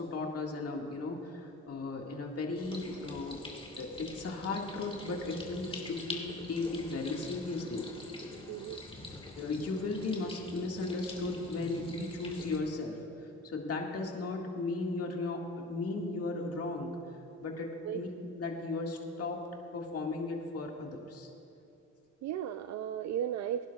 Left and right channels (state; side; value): normal; both; correlation 0.34